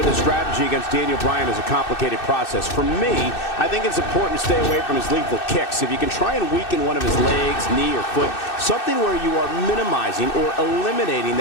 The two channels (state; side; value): late; right; 2.6 ms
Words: a strategy against Daniel Bryan is a complicated process. For me, I think it's important to stay away from his lethal kicks. If you can try and weaken one of his legs, knee, or foot, something where you are minimizing or eliminating